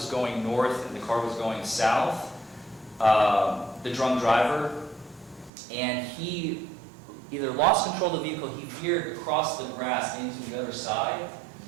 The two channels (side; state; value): left; drops out; at 5.5 s